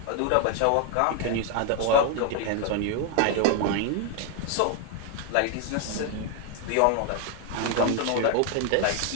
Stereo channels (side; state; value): both; different; correlation 0.00